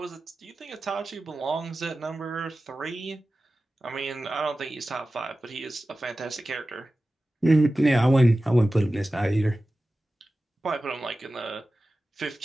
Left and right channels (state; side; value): normal; both; correlation 0.95